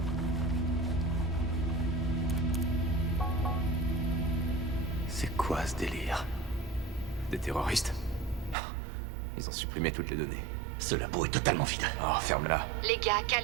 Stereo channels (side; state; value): left; drops out; at 8.6 s